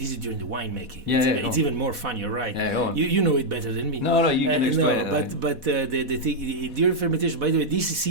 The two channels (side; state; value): left; late; 4.1 ms